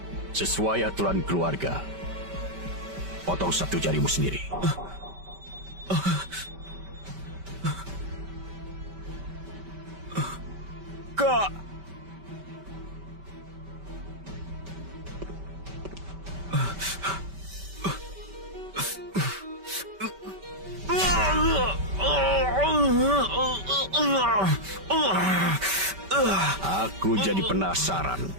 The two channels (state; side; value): late; left; 5.2 ms